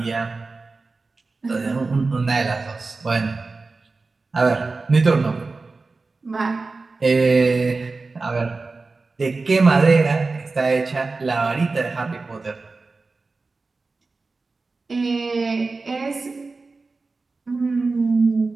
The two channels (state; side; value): quieter; left; 3.8 dB